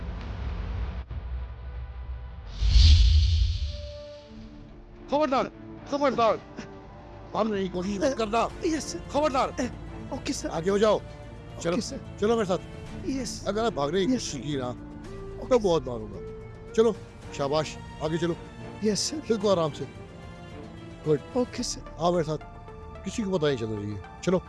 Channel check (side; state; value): both; identical; correlation 1.00